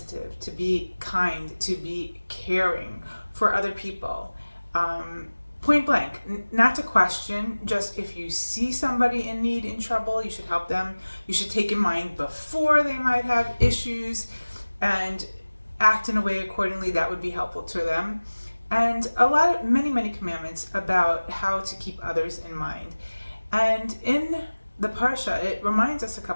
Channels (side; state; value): both; inverted; correlation -1.00